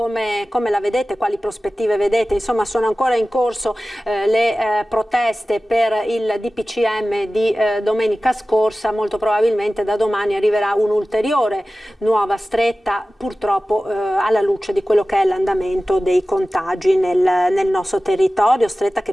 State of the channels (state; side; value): normal; both; correlation 0.96